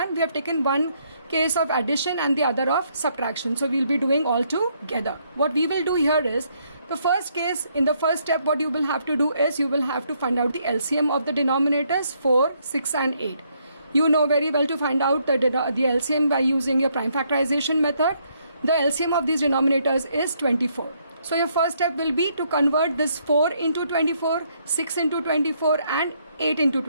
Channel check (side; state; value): both; inverted; correlation -0.72